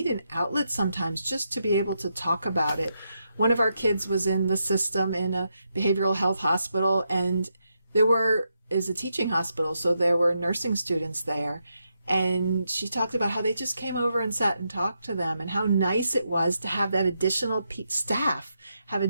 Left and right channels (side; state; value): both; inverted; correlation -0.83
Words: an outlet sometimes just to be able to talk about it. One of our kids was in the system in a behavioral health hospital, and is a teaching hospital, so there were nursing students there. And she talked about how they just came over and sat and talked to them, and how nice it was to have that additional staff, have